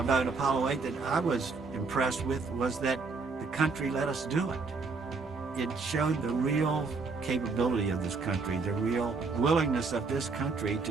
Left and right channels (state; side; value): quieter; left; 4.3 dB